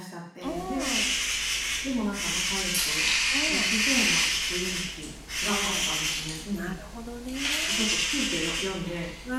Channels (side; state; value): both; identical; correlation 1.00